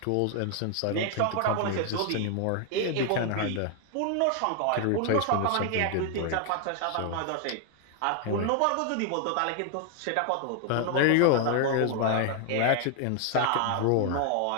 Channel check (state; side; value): different; both; correlation 0.00